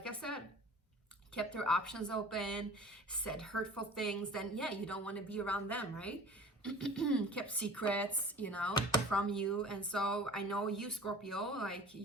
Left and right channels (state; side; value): normal; both; correlation 0.41